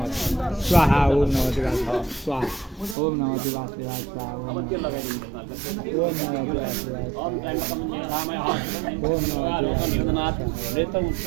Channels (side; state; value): left; drops out; at 3.0 s